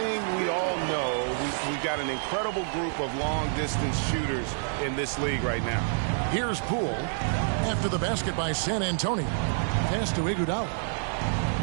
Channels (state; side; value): silent; left; digital silence